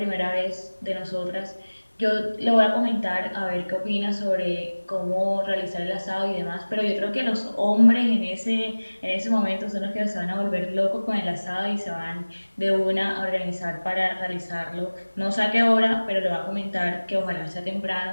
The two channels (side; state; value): both; inverted; correlation -1.00